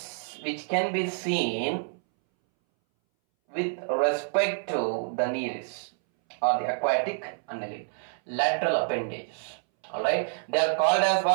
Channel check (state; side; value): silent; left; 60 dB below the other